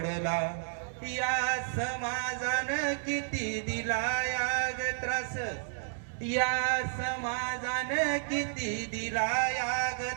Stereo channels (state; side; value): silent; left; digital silence